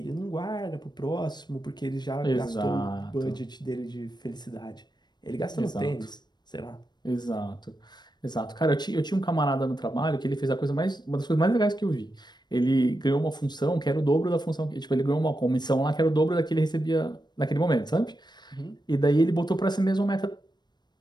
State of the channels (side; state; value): right; late; 0.21 ms